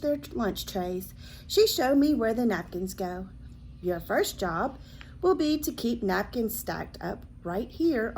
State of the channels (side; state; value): both; identical; correlation 1.00